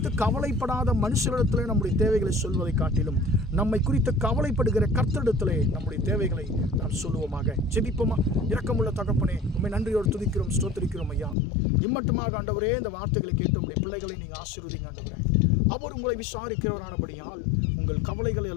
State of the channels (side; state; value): right; drops out; at 11.4 s